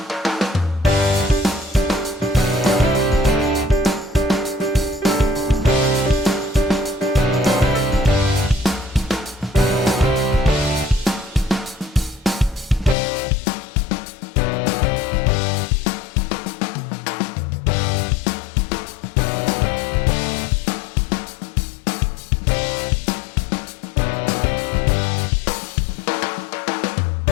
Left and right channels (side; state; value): right; drops out; at 13.0 s